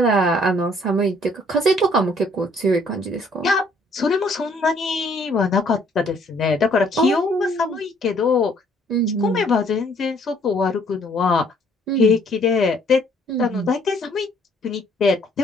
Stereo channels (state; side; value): normal; both; correlation 0.63